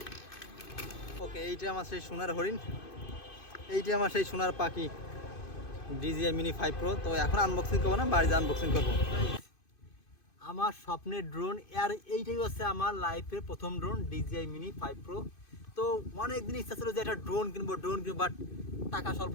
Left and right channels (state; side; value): late; right; 2.5 ms